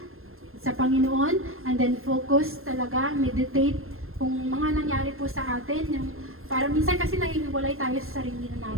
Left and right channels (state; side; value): late; left; 0.61 ms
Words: sa Panginoon, and then focus talaga, meditate kung mga nangyari po sa atin, yung para minsan kasi nahihiwalay tayo sa sarili